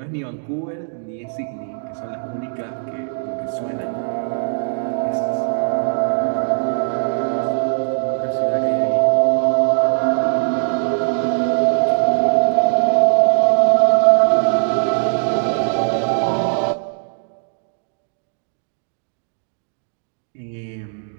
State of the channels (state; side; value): silent; left; digital silence